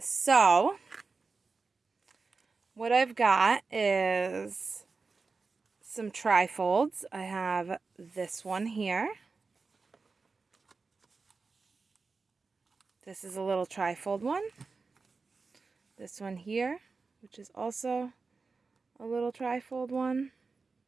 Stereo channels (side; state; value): left; quieter; 4.3 dB